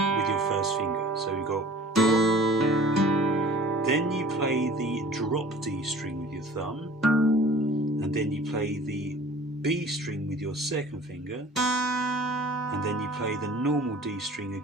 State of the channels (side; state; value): both; normal; correlation 0.47